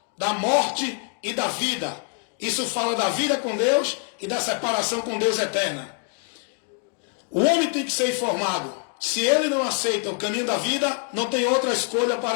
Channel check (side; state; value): right; quieter; 36.3 dB